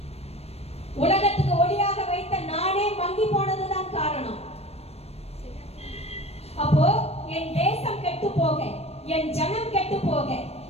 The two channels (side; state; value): right; late; 0.30 ms